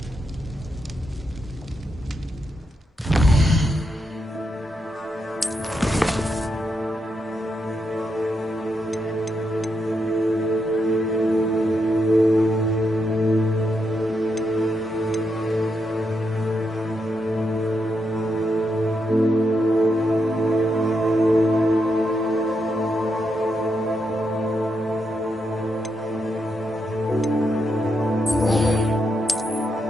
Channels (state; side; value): normal; both; correlation 0.82